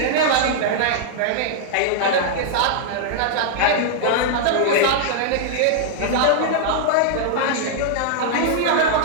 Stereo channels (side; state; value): both; different; correlation -0.01